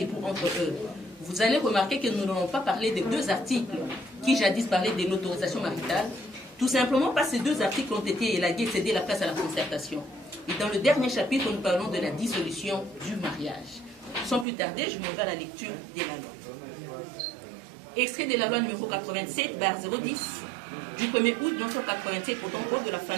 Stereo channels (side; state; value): left; drops out; at 14.5 s